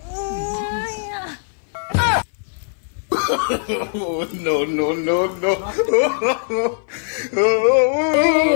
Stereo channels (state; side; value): silent; right; 58 dB below the other